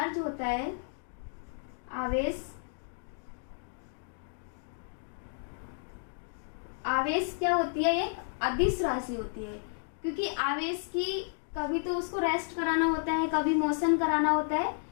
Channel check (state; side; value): silent; right; digital silence